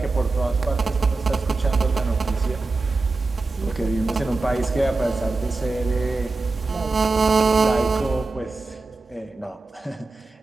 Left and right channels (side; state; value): left; quieter; 3.6 dB